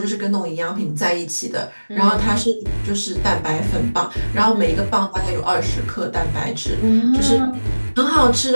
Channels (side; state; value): both; inverted; correlation -1.00